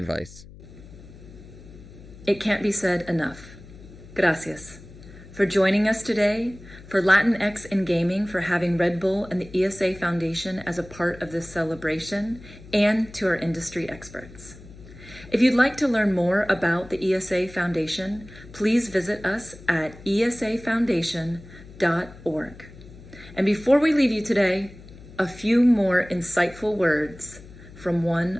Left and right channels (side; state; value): left; noise; hum, 19 dB below the sound